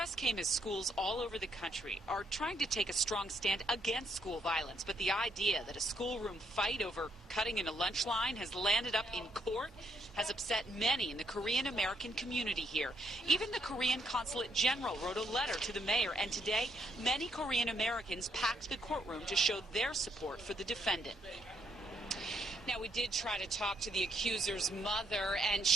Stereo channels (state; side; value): normal; both; correlation 0.73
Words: came as schools all over the country are trying to take a strong stand against school violence, but the idea that a schoolroom fight over cutting in a lunch line has landed up in court has upset many in the Korean American community here. Even the Korean Consulate General wrote a letter to the mayor, and today many Korean Americans packed the courtroom to show their support for the defendant. Now, we did try to talk to the accuser's mother, and